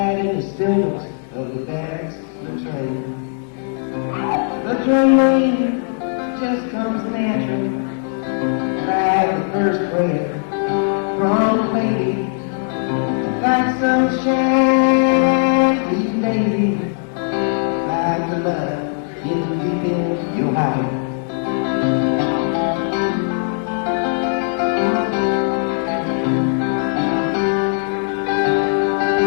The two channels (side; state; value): right; silent; 59 dB below the other